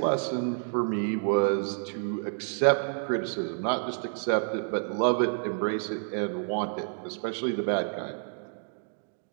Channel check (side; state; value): left; silent; digital silence